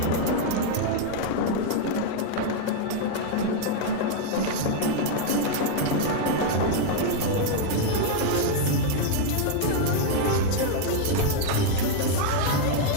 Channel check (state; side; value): different; both; correlation 0.00